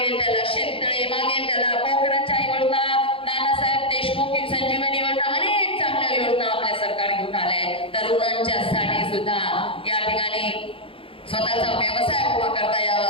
त्याला शेततळे, मागेल त्याला पोखराच्या योजना, नानासाहेब देशमुख संजीवनी योजना, अनेक चांगल्या योजना आपल्या सरकार घेऊन आलंय. तरुणांच्यासाठी सुद्धा या ठिकाणी स्वतःचा व्यवसाय उभा करता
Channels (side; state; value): right; late; 0.26 ms